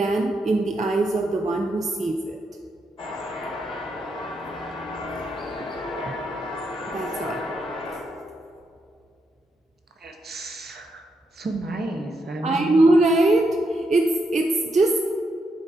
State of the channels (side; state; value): both; normal; correlation 0.81